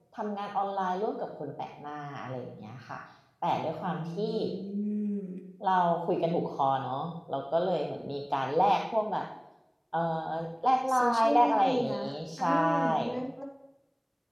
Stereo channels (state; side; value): identical; both; correlation 1.00